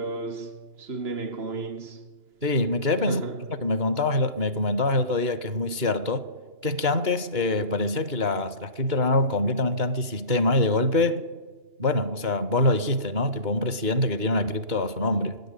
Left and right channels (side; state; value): left; late; 2.9 ms